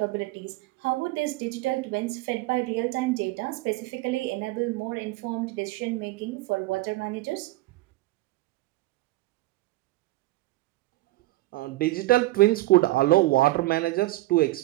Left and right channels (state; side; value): quieter; left; 19.1 dB